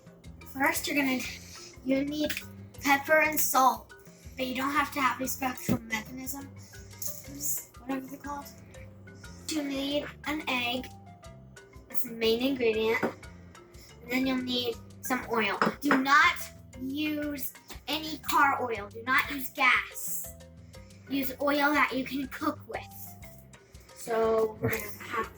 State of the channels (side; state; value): both; identical; correlation 1.00